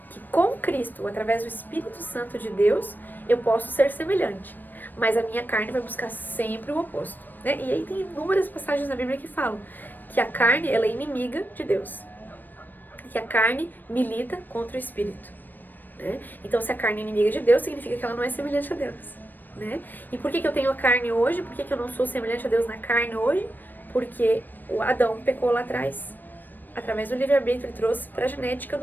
que com Cristo, através do Espírito Santo de Deus, eu posso ser semelhante. Mas a minha carne vai buscar sempre o oposto. Né? E aí tem inúmeras passagens na Bíblia que falam que a carne ela é inimiga de Deus. Que a carne milita contra o Espírito. Né? Então, se a carne é inimiga de Deus, significa que ela não é semelhante a Deus. Né? E por que eu tenho a carne hoje? Por que eu não sou semelhante a Deus na carne hoje? Porque o Adão pecou lá atrás. Através do livre-arbítrio, ele trouxe para a genética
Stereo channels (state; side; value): late; right; 0.091 ms